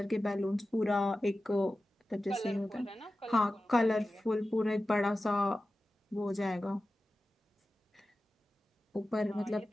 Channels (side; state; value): both; normal; correlation 0.94